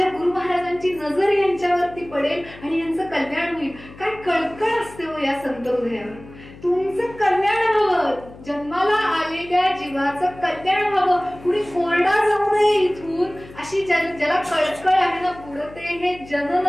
गुरु महाराजांची नजर यांच्यावरती पडेल आणि यांचं कल्याण होईल. काय कळकळ असते हो या संत हृदयावर. तुमचं कल्याण व्हावं, जन्माला आलेल्या जीवाचं कल्याण व्हावं, कुणी कोरडा जाऊ नये इथून, अशी ज्याला कळकळ आहे ना, बुडते हे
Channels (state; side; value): noise; left; hum, 19 dB below the sound